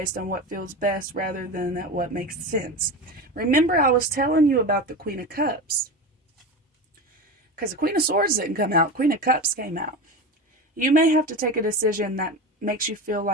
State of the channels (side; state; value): both; normal; correlation 0.25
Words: on what feels best rather than at what makes sense. Remember, I was telling you about the Queen of Cups. Because the Queen of Swords didn't come out. Queen of Cups came out. You may have to take a decision that makes you feel